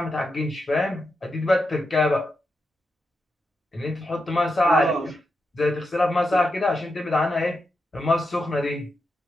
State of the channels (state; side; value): normal; both; correlation 0.86